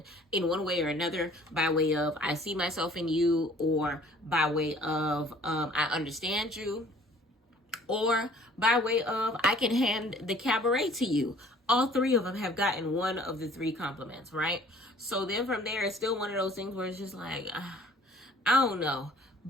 in one way or another, by way of I see myself in you, or by way of I understand you, or by way of I can hand the cabaret to you. All 3 of them have gotten one of the 3 compliments, right? So then from there, it's still one of those things where it's just like, I don't know.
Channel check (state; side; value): normal; both; correlation 0.53